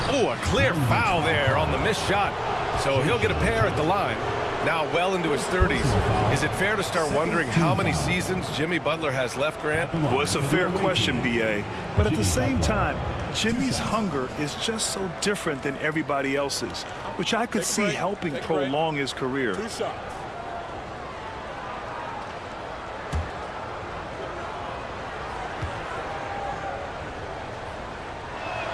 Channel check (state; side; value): identical; both; correlation 1.00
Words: Oh, a clear foul there on the missed shot. So he'll get a pair at the line. Now well into his 30s. Is it fair to start wondering how many seasons Jimmy Butler has left, Grant? Well, it's a fair question, B.A. But at the same time, Jimmy's hunger is just so different than everybody else's, which I could see helping prolong his career. 2 shots.